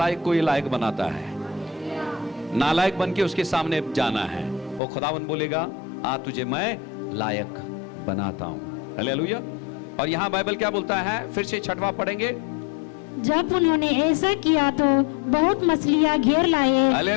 को ये लायक बनाता है, नालायक बन के उसके सामने जाना है। वो खुदावन बोलेगा, आ तुझे मैं लायक बनाता हूं। हालेलुया। और यहां बाइबल क्या बोलता है, फिर से छठवां पढ़ेंगे। जब उन्होंने ऐसा किया तो बहुत मछलियां घेर लाए।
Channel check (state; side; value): drops out; right; at 4.8 s